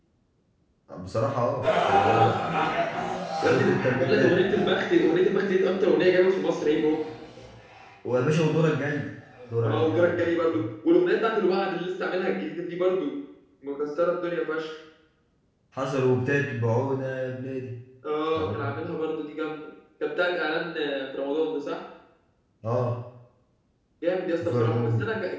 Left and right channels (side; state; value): both; identical; correlation 1.00